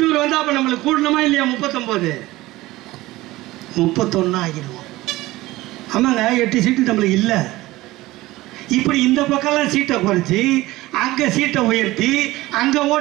வந்து அப்போ நம்மளுக்கு கூடணுமா இல்லையா? 39 31 ஆகிடுவோம். ஆமாங்க, 8 சீட்டு நம்மளுக்கு இல்லை. இப்படி இந்த பக்கம்லாம் சீட்டை குறைச்சி அங்கே சீட்டை உயர்த்தி அங்கே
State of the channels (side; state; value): left; quieter; 18.3 dB